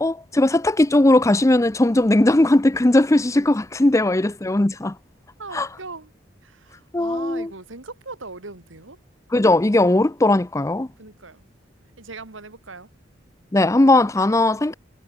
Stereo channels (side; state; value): both; normal; correlation 0.81